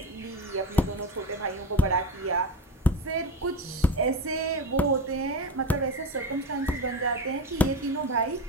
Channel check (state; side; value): normal; both; correlation 0.23